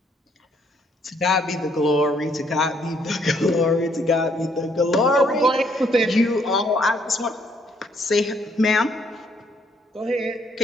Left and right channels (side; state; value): both; normal; correlation 0.69